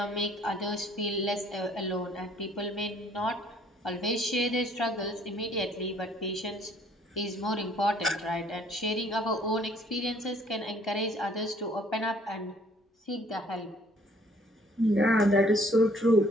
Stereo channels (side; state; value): both; normal; correlation 0.60